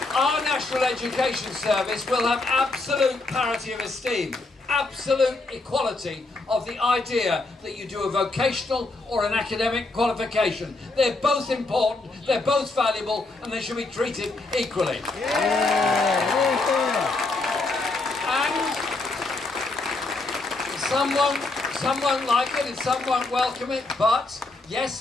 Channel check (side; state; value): right; quieter; 3.3 dB